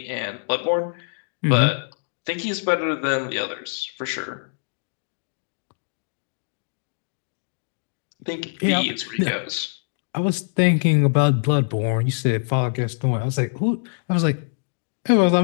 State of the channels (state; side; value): silent; right; digital silence